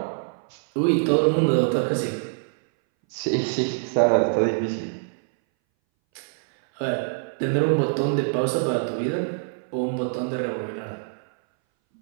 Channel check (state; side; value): silent; left; 61 dB below the other